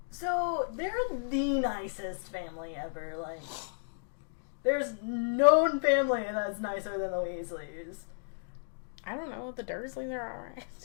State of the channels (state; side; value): silent; right; digital silence